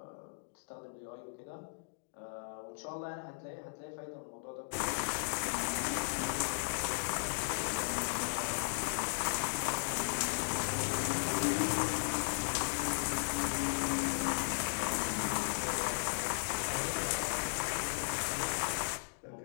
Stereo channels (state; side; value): silent; right; digital silence